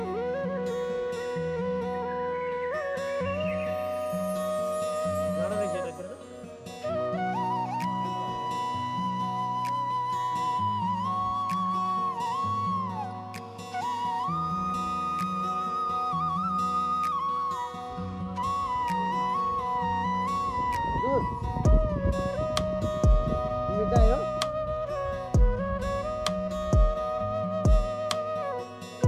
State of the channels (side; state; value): both; identical; correlation 1.00